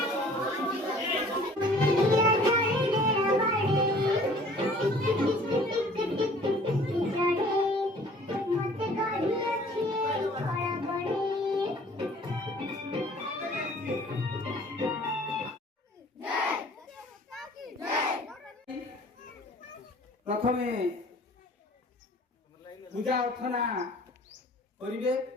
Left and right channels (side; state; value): both; normal; correlation 0.52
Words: प्रथमे पूजा अर्चना करिवे